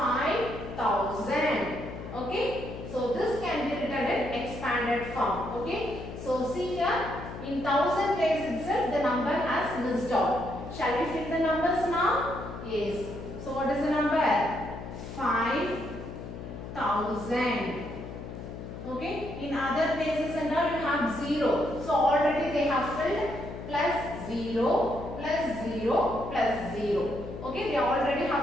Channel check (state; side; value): noise; left; hum, 10 dB below the sound